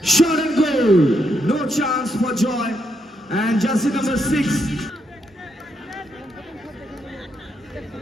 Shot and goal. No chance for Joy. And jersey number 6.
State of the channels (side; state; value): both; normal; correlation 0.78